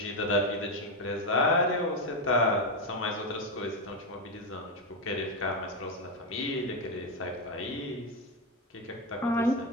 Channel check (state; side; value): normal; both; correlation 0.08